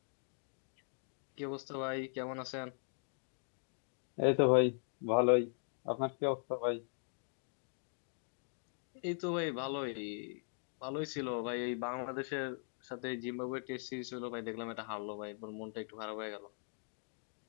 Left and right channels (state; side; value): silent; right; 51 dB below the other